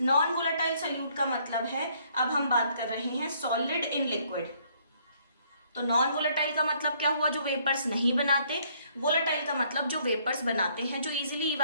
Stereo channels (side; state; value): both; inverted; correlation -0.66